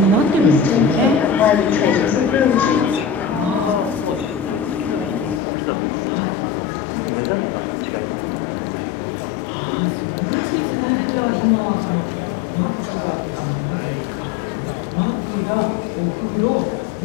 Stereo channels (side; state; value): right; drops out; at 5.4 s